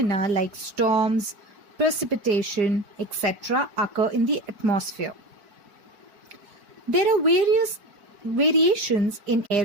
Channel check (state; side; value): late; left; 4.6 ms